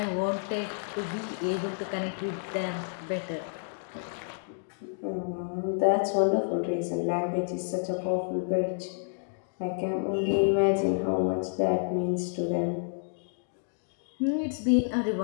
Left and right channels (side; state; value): right; silent; digital silence